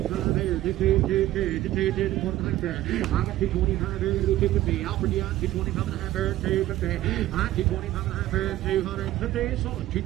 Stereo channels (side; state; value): left; quieter; 14.8 dB